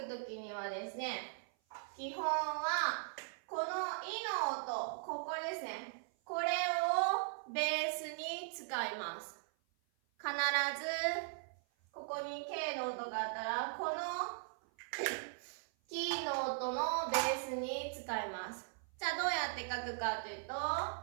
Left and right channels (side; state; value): left; silent; 52 dB below the other